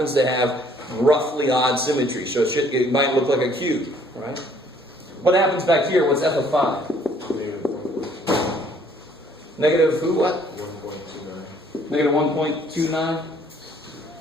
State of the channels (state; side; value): normal; both; correlation 0.61